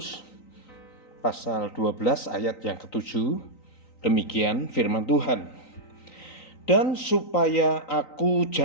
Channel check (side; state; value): right; late; 3.9 ms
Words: pasal 12 ayat yang ke-7. Demikian firman Tuhan. Dan supaya aku